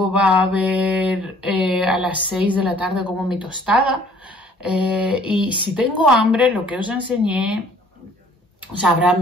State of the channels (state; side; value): normal; both; correlation 0.57